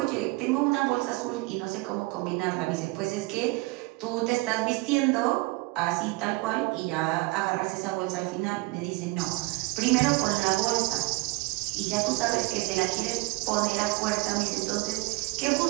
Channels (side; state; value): left; quieter; 23.8 dB